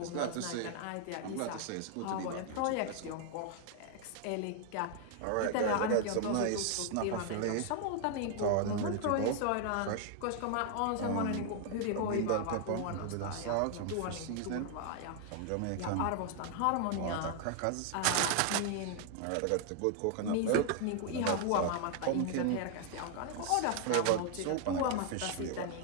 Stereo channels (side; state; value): both; different; correlation 0.00